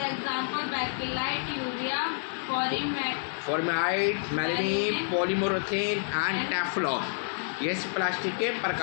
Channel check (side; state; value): right; silent; 59 dB below the other